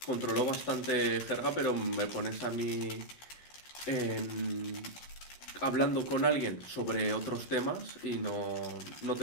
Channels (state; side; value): late; right; 14 ms